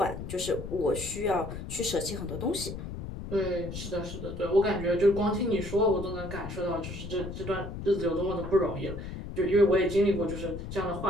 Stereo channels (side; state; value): left; noise; rumble, 8 dB below the sound